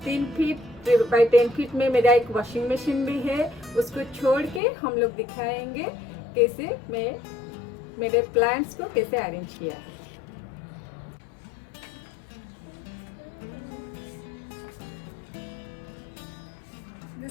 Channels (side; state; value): right; drops out; at 4.6 s